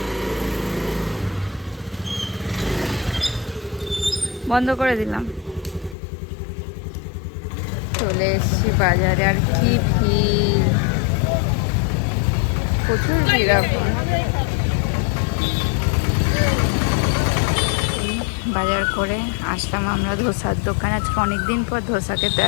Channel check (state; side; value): drops out; right; at 6.0 s